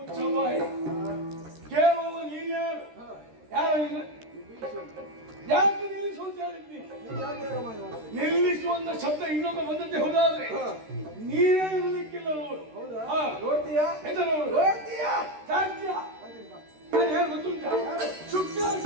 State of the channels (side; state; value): left; late; 13 ms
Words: ಕೇಳುವ ನೀನ್ಯಾರು? ಯಾರು ನೀನು? ಅಂತ ಹೇಳಿದ್ನಿ. ನೀವು ಯಾಕೆ ರಾಮಾಯಣ ಮಾಡ್ತೀರಿ? ನಿಲ್ಲಿಸುವಂತ ಶಬ್ದ ಇನ್ನೊಮ್ಮೆ ಬಂದದ್ದೇ ಹೋದಾದ್ರೆ ನೀನೇ ಇರಲಿಕ್ಕಿಲ್ಲ ನೋಡು. ಹೌದಾ? ಹಾ. ನೋಡ್ತೀಯಾ? ಎಂತ ನೋಡು? ನೋಡ್ತೀಯಾ? ಸಾಧ್ಯ ಹಾಗೆ ಬಾ. ನಾನು ಹೇಗೆ ಗೊತ್ತುಂಟ